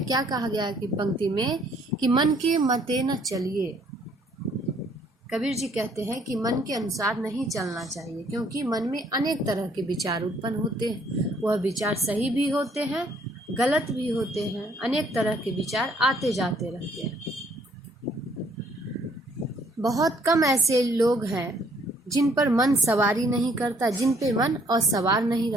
क्या कहा गया कि पंक्ति में कि मन के मते न चलिए। कबीर जी कहते हैं कि मन के अनुसार नहीं चलना चाहिए, क्योंकि मन में अनेक तरह के विचार उत्पन्न होते हैं। वह विचार सही भी होते हैं, गलत भी होते हैं, अनेक तरह के विचार आते जाते रहते हैं। बहुत कम ऐसे लोग हैं जिन पर मन सवारी नहीं करता, जिन पे मन असवार नहीं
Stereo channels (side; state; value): both; normal; correlation 0.64